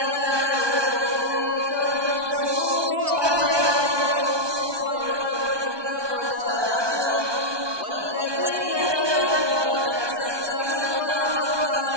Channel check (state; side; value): late; left; 1.2 ms